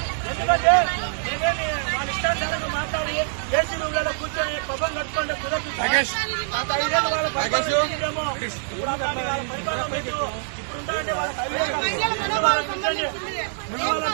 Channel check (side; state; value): left; silent; digital silence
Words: ఎందుకంటే మేమేమి వాళ్ళ ఇష్టానుసారంగా మాట్లాడి ఏసీలలో కూర్చొని పబ్బం కట్టుకుంటే కుదరదు. గత 5 ఏళ్ళు వాళ్ళ పరిపాలన చేసిందేమో, ఇప్పుడు అట్లాంటి వాళ్ళ పరిపాలన లేదు. ఇప్పుడు ఉండాలంటే వాళ్ళకి